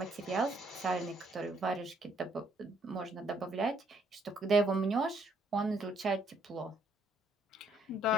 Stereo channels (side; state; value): both; normal; correlation 0.68